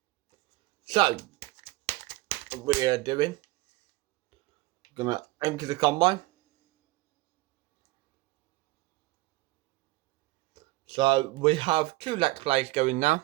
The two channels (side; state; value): left; quieter; 20.0 dB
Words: So what we are doing, gonna empty the combine. So we have 2 let's plays going